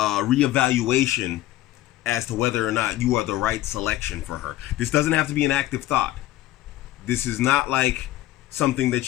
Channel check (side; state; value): right; quieter; 15.2 dB